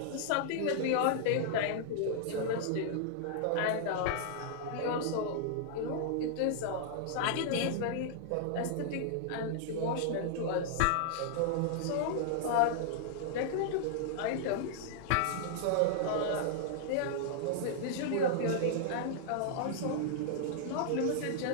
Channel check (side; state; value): both; different; correlation -0.01